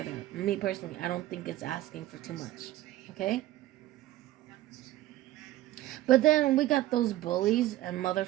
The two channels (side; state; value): left; quieter; 15.4 dB